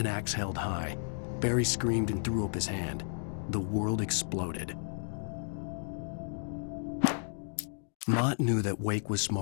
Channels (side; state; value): right; silent; digital silence